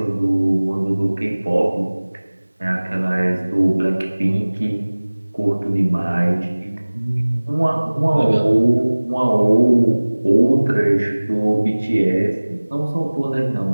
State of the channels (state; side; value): inverted; both; correlation -1.00